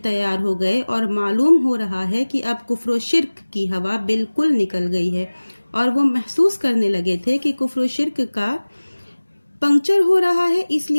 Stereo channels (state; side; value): inverted; both; correlation -1.00